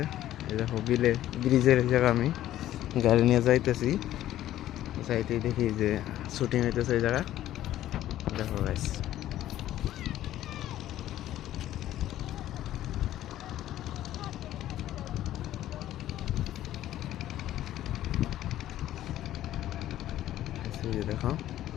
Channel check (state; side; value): quieter; right; 13.2 dB